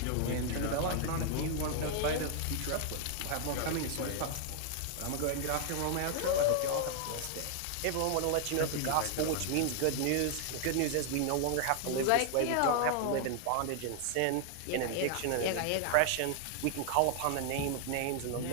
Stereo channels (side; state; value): both; different; correlation 0.00